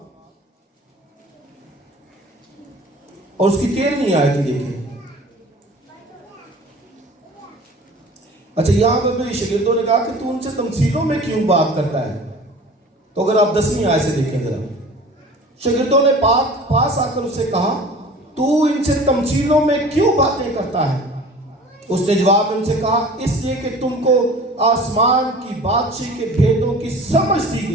اور اس کی 13ویں آیت دیکھیں۔ اچھا، یہاں پہ میرے شاگردوں نے کہا کہ تو ان سے تمثیلوں میں کیوں بات کرتا ہے؟ تو اگر آپ 10ویں آیت سے دیکھیں ذرا، شاگردوں نے پاس آ کر اس سے کہا تو ان سے تمثیلوں میں کیوں باتیں کرتا ہے؟ اس نے جواب میں ان سے کہا اس لیے کہ تم کو آسمان کی بادشاہی کے بھیدوں کی سمجھ دی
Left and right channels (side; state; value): both; normal; correlation 0.43